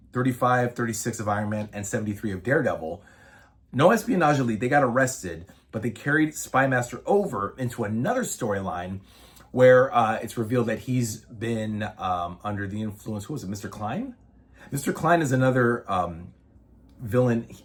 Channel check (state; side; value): identical; both; correlation 1.00